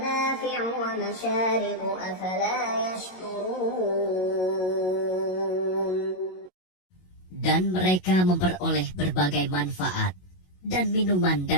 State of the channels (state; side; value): late; right; 22 ms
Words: وَمَشَارِبُ أَفَلَا يَشْكُرُونَ. Dan mereka memperoleh berbagai manfaat dan minuman